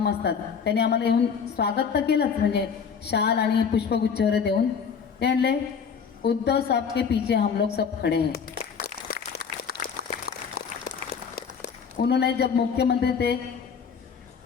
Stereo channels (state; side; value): quieter; right; 6.5 dB